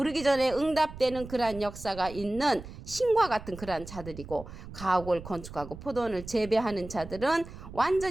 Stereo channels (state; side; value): noise; right; rumble, 14 dB below the sound